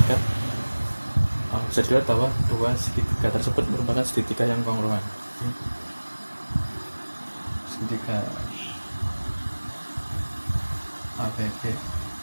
bisa dilihat bahwa dua segitiga tersebut merupakan segitiga yang kongruen. Segitiga ABB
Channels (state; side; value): inverted; both; correlation -1.00